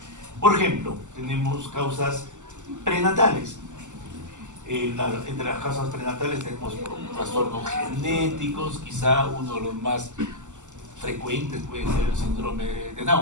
Por ejemplo, tenemos causas prenatales. Entre las causas prenatales tenemos trastornos genéticos, quizá uno de los más frecuentes puede ser el síndrome de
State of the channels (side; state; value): left; late; 0.85 ms